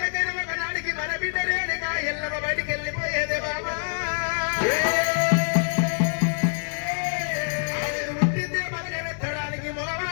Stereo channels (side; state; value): right; silent; 61 dB below the other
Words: ఒకనాడికి మన బిడ్డలేనిగా ఎల్లమ్మ బయటికి వెళ్ళిపోయేదే బాబా. ఆవిడ పుట్టిందే మనని వెత్తడానికి,